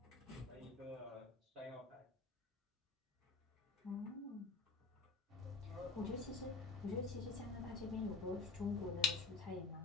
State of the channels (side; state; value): right; quieter; 4.1 dB